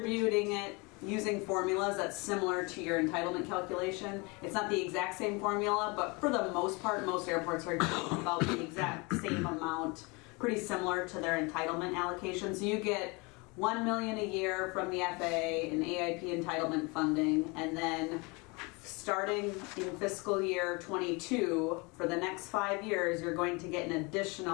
it using formulas that's similar to your entitlement calculation. It's not the exact same formula, but for the most part, most airports are getting about the exact same amount, pretty similar to their entitlement allocation. So you get $1 million a year from the FAA and AIP entitlement funding, and then starting in fiscal year 22, for the next 5 years, you're going to get an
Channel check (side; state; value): right; quieter; 28.0 dB